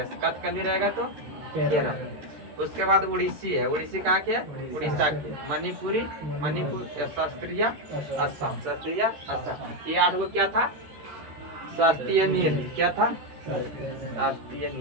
कथकली रहेगा तो केरल। उसके बाद उड़ीसी है। उड़ीसी कहाँ के? उड़ीसा के। मणिपुरी मणिपुर शास्त्रीय असम। शास्त्रीय असम। ये 8 को क्या था? शास्त्रीय नृत्य। क्या था? शास्त्रीय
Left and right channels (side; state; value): left; late; 13 ms